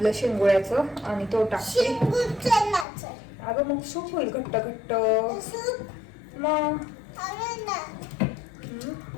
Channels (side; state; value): right; drops out; at 2.9 s